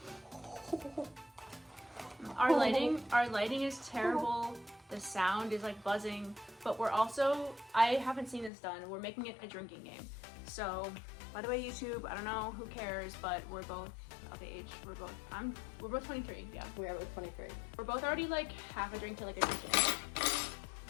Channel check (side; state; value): right; drops out; at 8.5 s